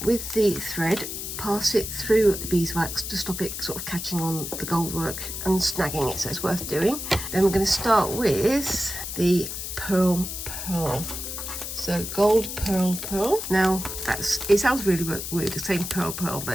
with the thread, pass it through the beeswax to stop it sort of catching on the gold work and snagging it, so it's worth doing. Then we're going to start with the pearl. So gold pearl. Now it sounds really weird saying pearl,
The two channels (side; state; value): left; noise; hiss, 6 dB below the sound